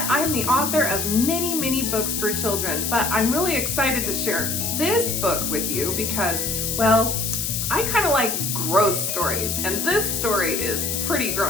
I'm the author of many books for children, but I'm really excited to share this book with you because, well, I kind of like gross stories, and this story is pretty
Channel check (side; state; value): left; noise; hiss, 1 dB below the sound